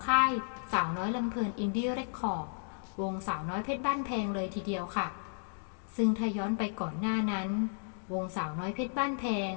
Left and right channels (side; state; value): right; silent; digital silence